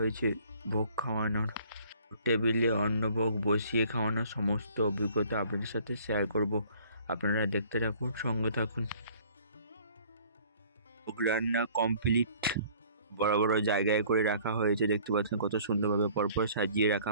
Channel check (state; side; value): inverted; both; correlation -0.55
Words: ভোগ খাওয়ানোর। টেবিলে অন্নভোগ বসিয়ে খাওয়ানোর সমস্ত অভিজ্ঞতা আপনাদের সাথে শেয়ার করব। আপনারা দেখতে থাকুন, সঙ্গে থাকুন। ভোগ রান্না কমপ্লিট। বড় বড় জায়গায় করে রাখা হয়েছে, দেখতে পাচ্ছেন কত সুন্দরভাবে পরপর সাজিয়ে